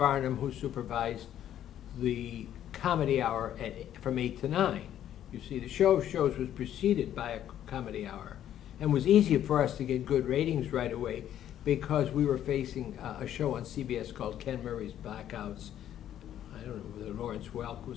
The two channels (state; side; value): quieter; right; 11.0 dB